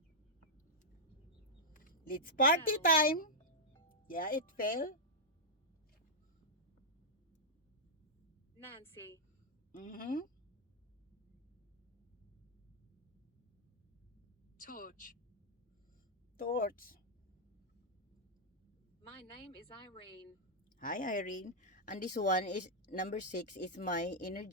Let's party Fell. time. Yeah, it fell. Nancy. Mm-hmm. Torch. Torch. My name is Irene. Hi, Irene. And this one is number 6 is my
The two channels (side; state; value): both; normal; correlation -0.08